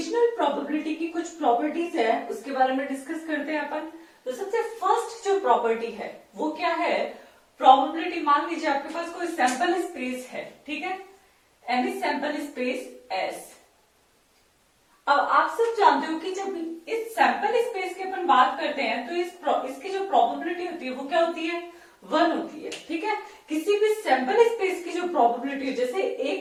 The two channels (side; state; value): both; identical; correlation 1.00